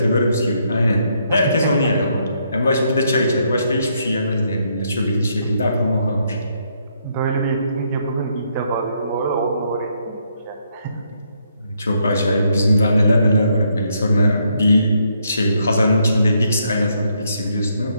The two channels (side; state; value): both; inverted; correlation -0.74